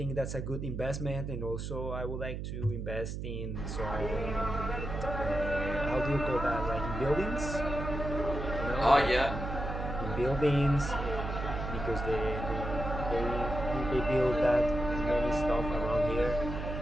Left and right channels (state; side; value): noise; right; hum, 5 dB below the sound